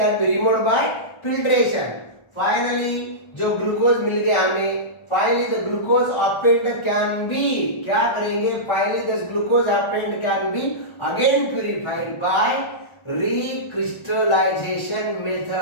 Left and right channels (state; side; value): late; right; 1.4 ms